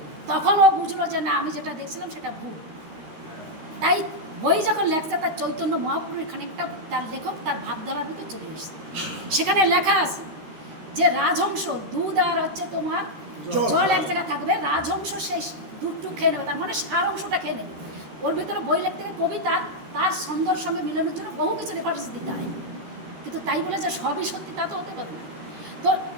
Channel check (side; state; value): left; late; 13 ms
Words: তখন ও বুঝলো যে না, আমি যেটা দেখছিলাম সেটা ভুল। তাই বই যখন লেখছে, তার চৈতন্য মহাপ্রভুর খানিকটা তার লেখক তার ভাবধারার ভিতরে চলে এসেছে। সেখানে লেখা আছে যে রাজহংস দুধ আর হচ্ছে তোমার জল এক জায়গায় থাকবে, রাজহংস সেই দুধটুক খেয়ে নেবে, তার মানে সার অংশটা খেয়ে নেবে। ওর ভিতরে বই লিখতে গেলে কবি তার ছন্দর সঙ্গে মিলনের জন্য বহু কিছু রেফারেন্স দিতে হয়, কিন্তু তাই বলে যে সবই সত্যি তা তো হতে পারে না। তো